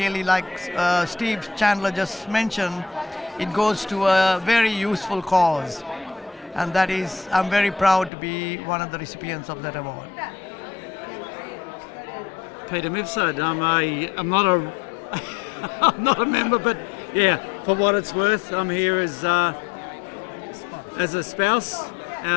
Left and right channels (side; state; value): right; drops out; at 8.1 s